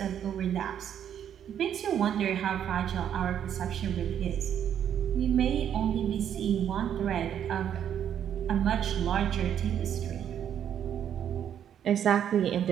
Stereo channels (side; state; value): left; quieter; 9.4 dB